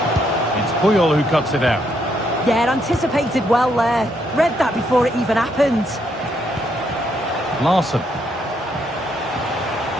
Puyol who cuts it out. Yeah, anticipated well there. Read that before it even happened. Larson.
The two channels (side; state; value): both; normal; correlation 0.74